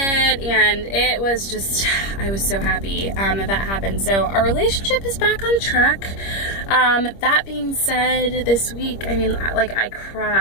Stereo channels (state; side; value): late; right; 25 ms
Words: and it was just, I was so happy that happened. So our relationship is back on track. That being said, this week, I mean, like, I